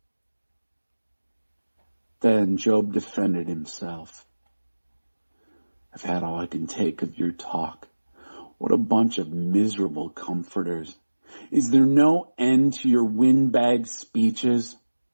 Then Job defended himself. I've had all I can take of your talk. What a bunch of miserable comforters. Is there no end to your windbag speeches?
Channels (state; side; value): inverted; both; correlation -1.00